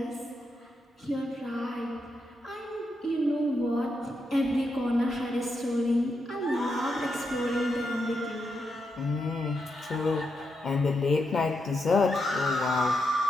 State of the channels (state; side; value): normal; both; correlation 0.83